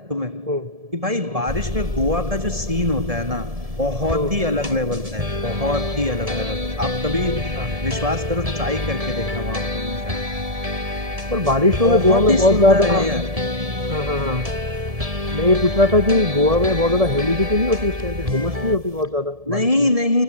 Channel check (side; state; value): left; late; 1.7 ms